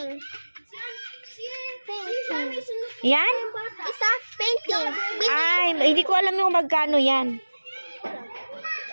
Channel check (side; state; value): both; inverted; correlation -1.00